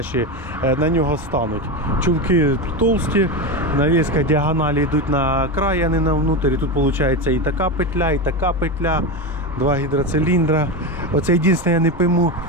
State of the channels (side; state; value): both; normal; correlation 0.17